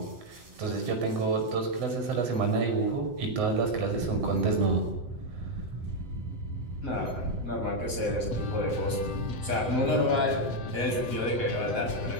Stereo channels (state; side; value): late; left; 7.9 ms